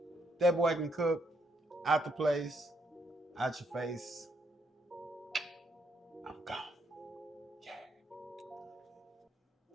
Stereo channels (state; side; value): normal; both; correlation 0.74